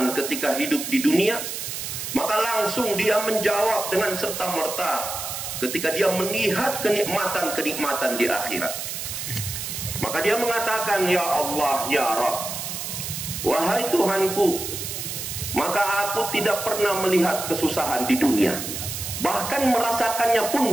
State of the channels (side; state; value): right; noise; hiss, 6 dB below the sound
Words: ketika hidup di dunia? Maka langsung dia menjawab dengan serta-merta ketika dia melihat kenikmatan-kenikmatan di akhirat. Maka dia mengatakan, ya Allah, ya Rabb, wahai Tuhanku, maka aku tidak pernah melihat kesusahan di dunia, bahkan merasakannya